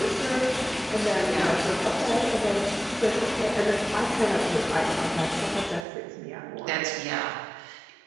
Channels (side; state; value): left; drops out; at 5.9 s